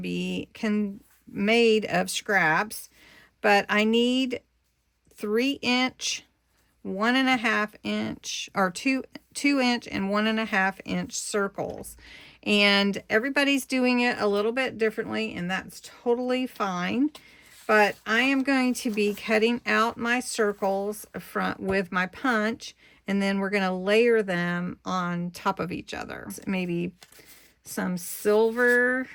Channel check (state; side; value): identical; both; correlation 1.00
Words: made of scraps, but I need 3-inch, 1.5 inch, or 2-inch and 1.5 inch circles. And everybody's doing it a little bit differently, and that's totally fine. But I am going to be cutting out my circles with my punch, and then we're going to layer them on top of each other. Maybe some silver